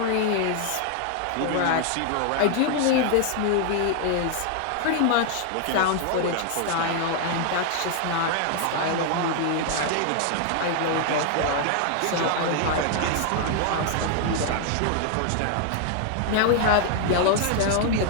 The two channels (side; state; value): both; different; correlation 0.00